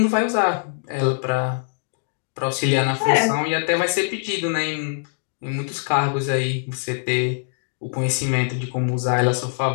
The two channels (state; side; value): silent; right; 64 dB below the other